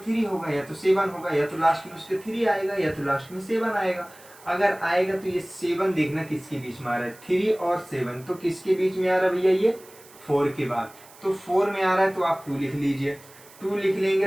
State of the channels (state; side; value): noise; right; hiss, 23 dB below the sound